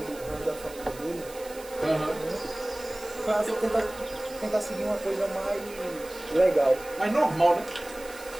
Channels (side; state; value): right; noise; hiss, 18 dB below the sound